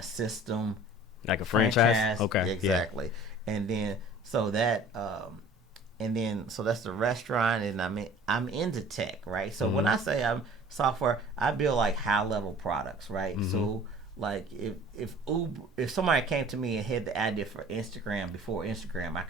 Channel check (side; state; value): both; normal; correlation 0.47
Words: system, like a franchise. Okay, exactly. Yeah. And then so that so that's the restaurant, and I'm into tech, right? So when I say I'm software, I build like high level products, right? So like if somebody came to me and had the idea for Instagram before Instagram, I